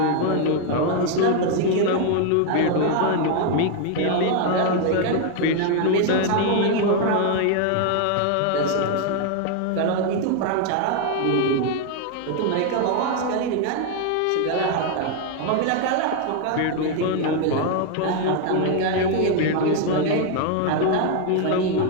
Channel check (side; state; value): both; different; correlation 0.00